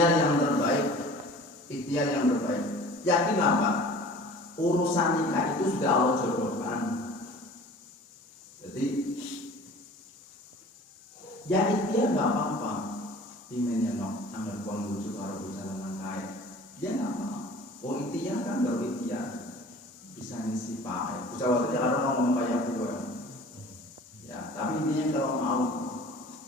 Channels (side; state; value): both; normal; correlation 0.44